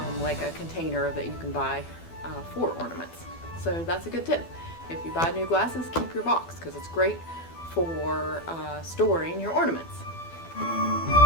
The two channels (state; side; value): late; right; 12 ms